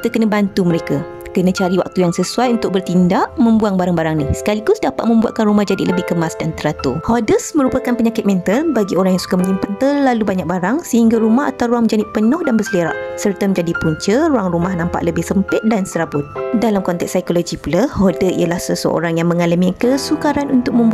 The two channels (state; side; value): identical; both; correlation 1.00